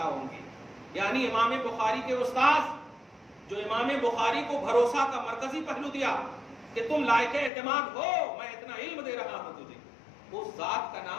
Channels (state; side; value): drops out; right; at 7.5 s